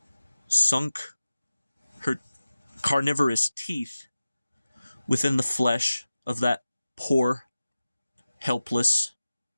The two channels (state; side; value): inverted; both; correlation -0.96